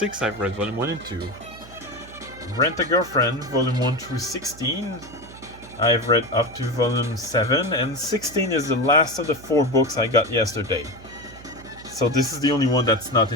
I've read Volume 1 and 2. Rent a Girlfriend, Volume 1 through 16, I've read up to Volume 7. And 16 is the last of the 4 books I got yesterday. So this is the only one that's not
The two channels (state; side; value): noise; right; hum, 18 dB below the sound